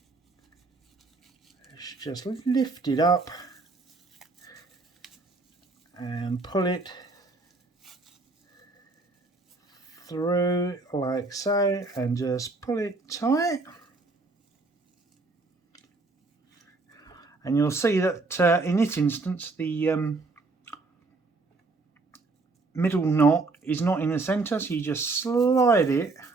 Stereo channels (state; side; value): quieter; left; 3.6 dB